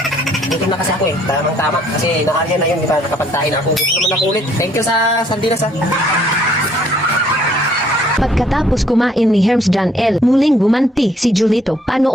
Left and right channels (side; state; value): both; normal; correlation 0.63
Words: Gutom na kasi ako eh. Tamang-tama. Kasi nakarya na yun, di ba? Nakapagtahin ako. Gusto naman ako ulit. Thank you sa sardinas ha. Pagkatapos kumain ni Herms John L, muling gumanti si Julito.